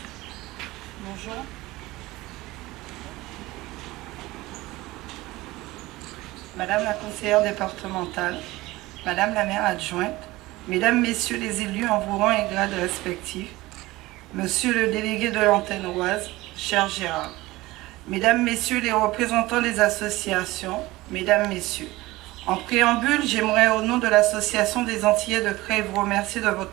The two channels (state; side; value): quieter; left; 19.3 dB